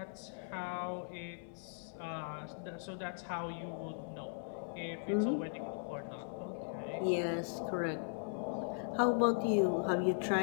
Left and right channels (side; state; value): right; silent; 52 dB below the other